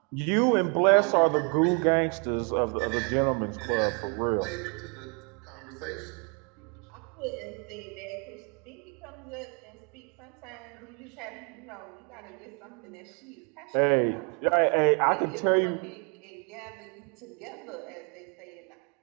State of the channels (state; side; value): quieter; left; 36.5 dB